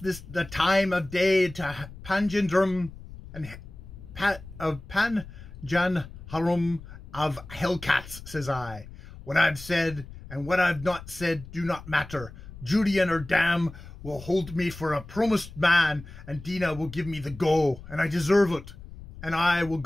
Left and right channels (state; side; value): noise; left; rumble, 15 dB below the sound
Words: time of day to Panjandrum and of Panjanharum of Hellcats, says I. What I've said and what I've not said do not matter. Judy and her dam will hold me for a promised man, and Dina will give me the go, and I deserve it. And I will